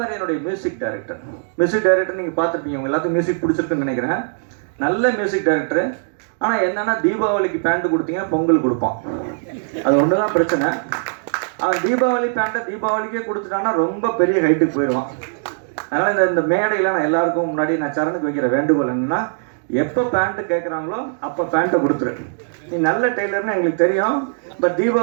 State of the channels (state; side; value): silent; left; digital silence